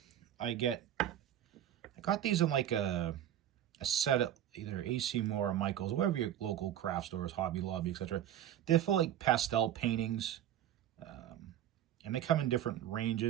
I got these in like a set at either AC Moore or Michael's, or wherever your local craft stores, Hobby Lobby, etc. They're for like pastel paintings, and they come in different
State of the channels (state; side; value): quieter; left; 11.4 dB